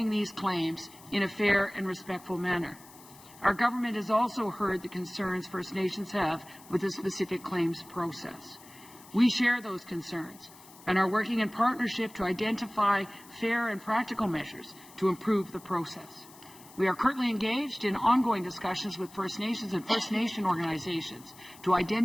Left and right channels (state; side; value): noise; left; hiss, 21 dB below the sound